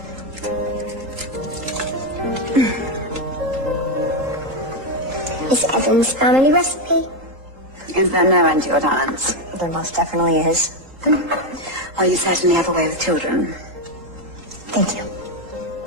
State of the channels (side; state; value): left; late; 3.8 ms